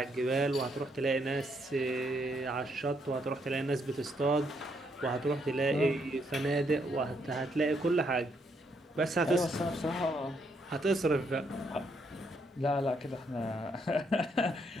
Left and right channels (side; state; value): both; normal; correlation 0.74